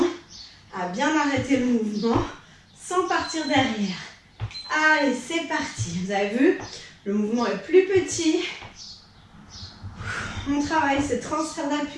à bien arrêter le mouvement sans partir derrière. Allez, c'est parti. Vous avez vu, le mouvement est plus petit. On travaille ce transfert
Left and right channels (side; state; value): both; identical; correlation 1.00